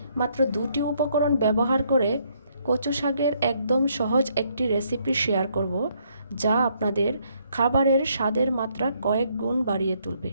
মাত্র দুটি উপকরণ ব্যবহার করে কচু শাকের একদম সহজ একটি রেসিপি শেয়ার করব, যা আপনাদের খাবারের স্বাদের মাত্রা কয়েক গুণ বাড়িয়ে তুলবে।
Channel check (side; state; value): both; inverted; correlation -0.71